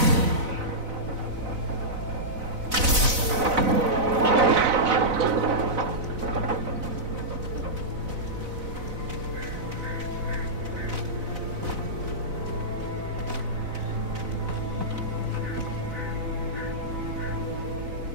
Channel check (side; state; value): left; late; 4.0 ms